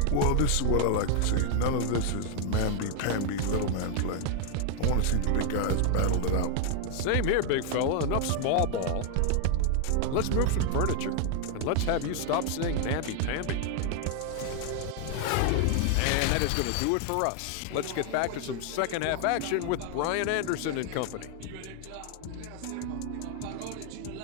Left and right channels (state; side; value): different; both; correlation 0.00